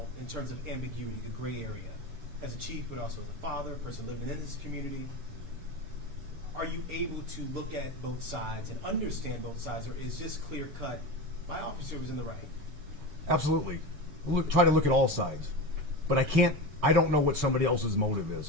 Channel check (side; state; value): left; late; 7.0 ms